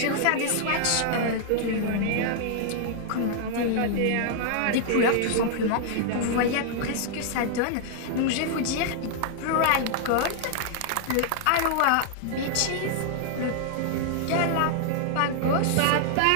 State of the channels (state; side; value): different; both; correlation 0.00